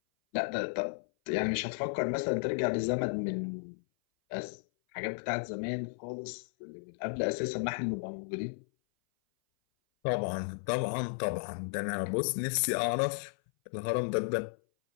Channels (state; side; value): silent; right; 55 dB below the other